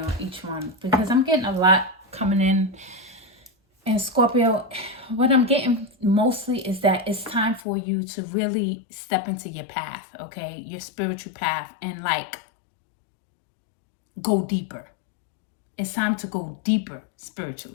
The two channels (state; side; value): drops out; right; at 7.6 s